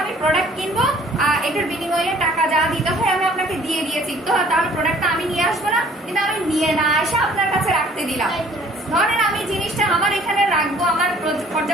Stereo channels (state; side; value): normal; both; correlation 0.55